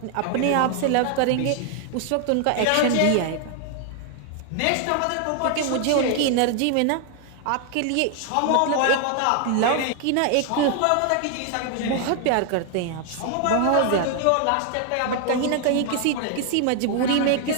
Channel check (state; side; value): different; both; correlation 0.00